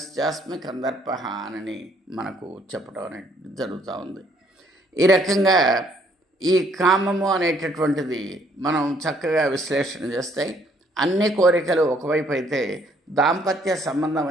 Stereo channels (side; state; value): both; normal; correlation 0.65